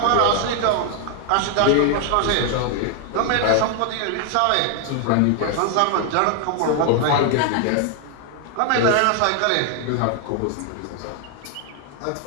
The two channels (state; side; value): different; both; correlation 0.00